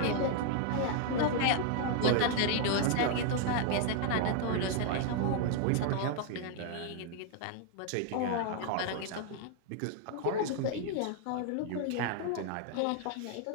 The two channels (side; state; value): both; different; correlation 0.00